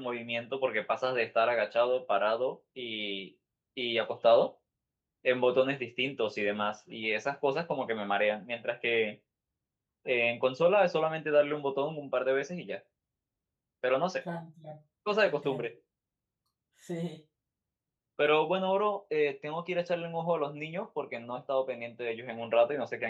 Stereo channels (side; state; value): both; identical; correlation 1.00